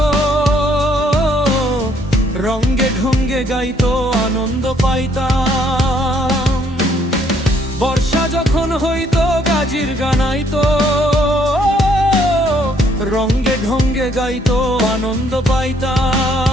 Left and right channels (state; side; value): normal; both; correlation 0.67